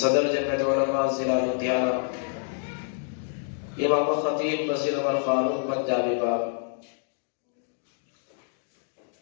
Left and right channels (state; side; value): silent; right; digital silence